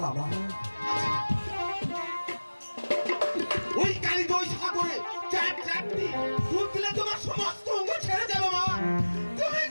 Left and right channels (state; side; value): inverted; both; correlation -1.00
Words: বাবা। ওই কালী দই সাগরে চারটি দুধ দিলে তোমার সমস্ত অঙ্গ ছেড়ে যাবে মা। তুমি